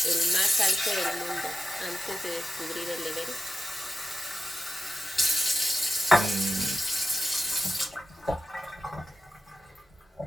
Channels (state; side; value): normal; both; correlation 0.91